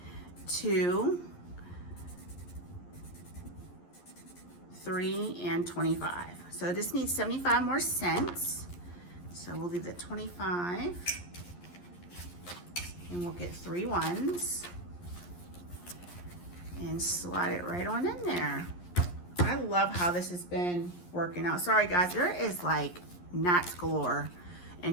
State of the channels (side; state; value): right; late; 11 ms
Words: 2, 3, and 25. So this needs 75 more cents. So we'll leave the 25, and we'll get 3 ones and slide it right on in there. I love how this has been working out. Sorry guys, there is like gnats galore in